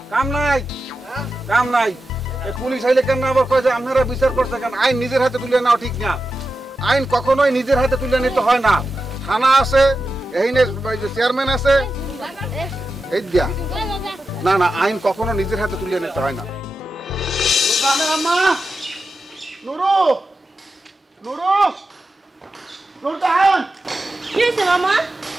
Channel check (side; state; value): both; normal; correlation 0.91